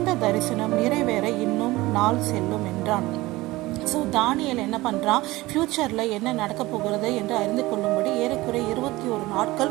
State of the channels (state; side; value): quieter; left; 19.5 dB